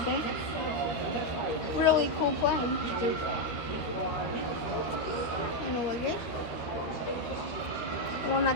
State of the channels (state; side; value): late; right; 13 ms